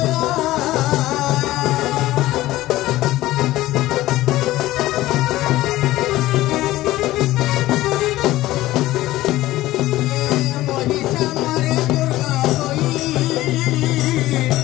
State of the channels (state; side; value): quieter; right; 16.4 dB